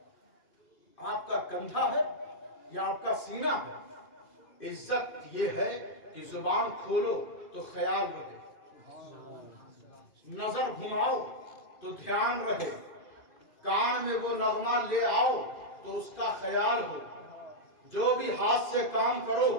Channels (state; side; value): late; right; 2.6 ms